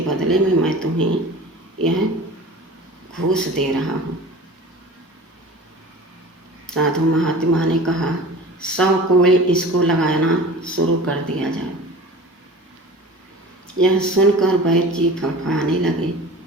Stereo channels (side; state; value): both; normal; correlation 0.39